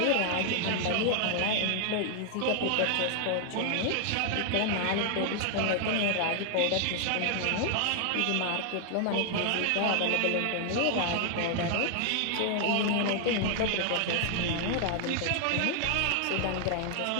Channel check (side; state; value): both; different; correlation 0.00